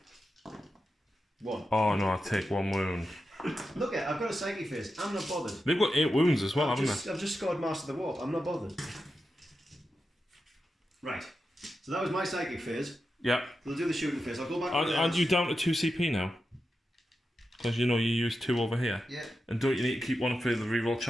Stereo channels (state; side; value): normal; both; correlation 0.90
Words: 1. Oh no, I take 1 wound. Look I've got a psychic phase. I'm not bothered. They've got 8 wounds as well, haven't they? I've just scored Master of the Warp. I'm not bothered. Right. So that was my psychic phase. Yeah. We'll do the shooting phase. I'll go back. Aren't you down to 2 CP now? Because you know you use 2 over here. Yeah. And don't you need to keep one for the reroll